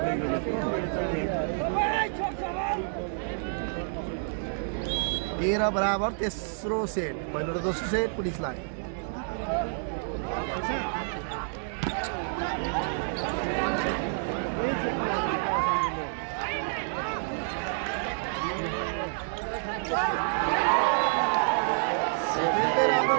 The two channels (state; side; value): silent; left; digital silence